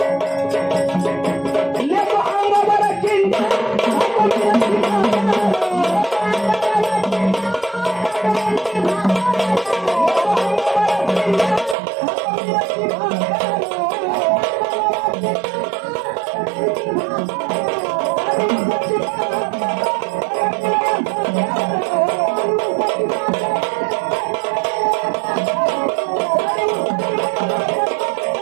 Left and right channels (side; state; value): left; drops out; at 11.8 s